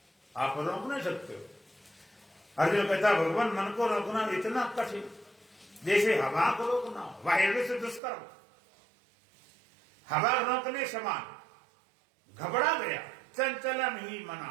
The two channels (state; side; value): drops out; left; at 8.0 s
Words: आप रोक नहीं सकते हो। अर्जुन कहता भगवान मन को रोकना इतना कठिन, जैसे हवा को रोकना वायु से दुष्कर्म। हवा रोकने समान, घबरा गया चंचलम ही मना